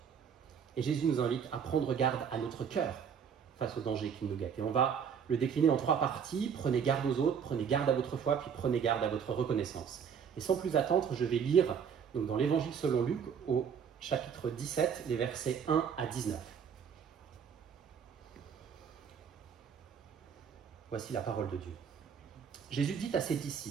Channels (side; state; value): left; quieter; 7.3 dB